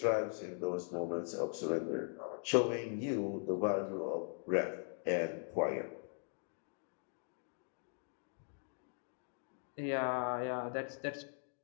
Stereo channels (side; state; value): right; silent; 51 dB below the other